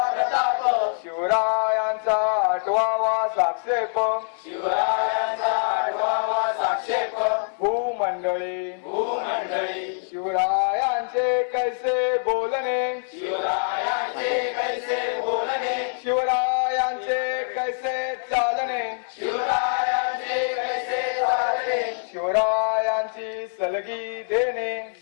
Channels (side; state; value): right; silent; digital silence